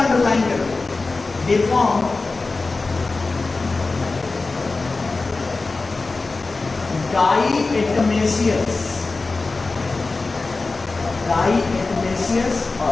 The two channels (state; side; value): quieter; right; 3.7 dB